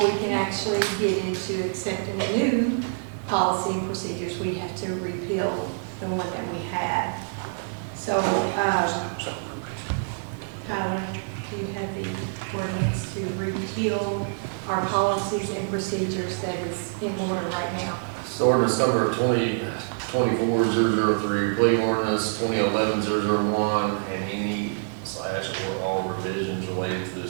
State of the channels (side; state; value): left; silent; digital silence